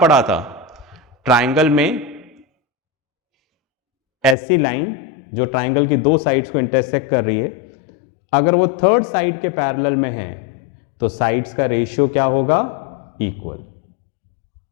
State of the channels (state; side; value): drops out; right; at 4.4 s